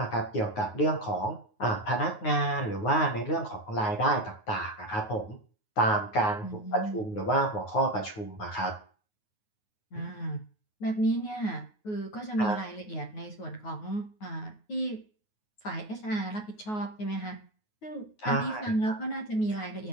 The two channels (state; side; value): late; right; 9.4 ms